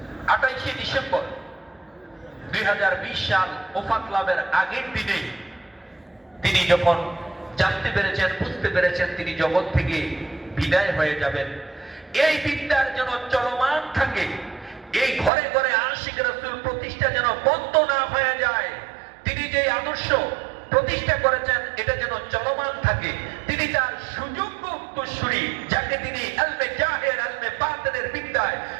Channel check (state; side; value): drops out; left; at 15.3 s